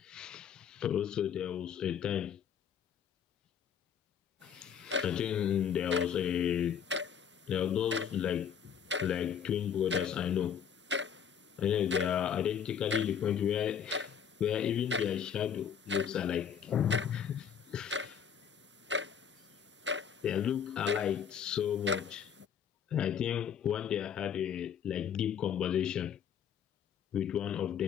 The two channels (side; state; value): right; quieter; 8.0 dB